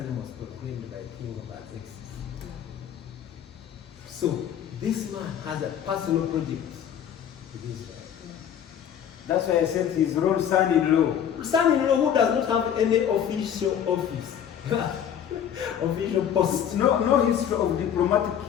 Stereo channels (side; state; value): right; quieter; 9.2 dB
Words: was proclaimed by King Artaxerxes. So, this man has a personal project with Israel. That's why I said his own son-in-law. Son-in-law who does not have any official office, official post. No history of diplomatic.